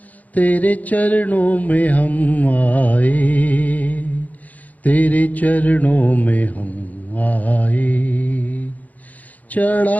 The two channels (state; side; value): late; right; 0.077 ms